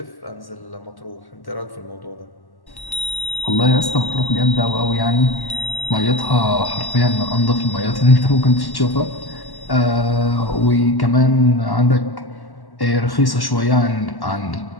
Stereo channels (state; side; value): late; right; 1.1 ms